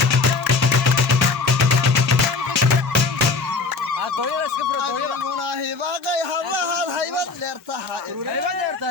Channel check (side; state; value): right; quieter; 4.1 dB